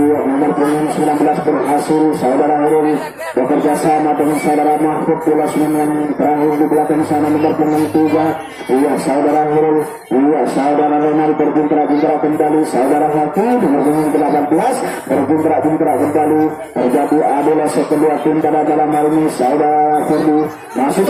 Nomor punggung 19 berhasil saudara Hurul bekerja sama dengan saudara Mahfud Pulas yang terakhir di belakang sana nomor punggung 3. Iya saudara Hurul, iya saudara Ronald berpuntra-puntra kembali, saudara Hakim nomor punggung 18 berpuntra-puntra kembali. Terjadi adalah kedua tim pada dalam hal ini saudara Ferdi masih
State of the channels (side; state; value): both; identical; correlation 1.00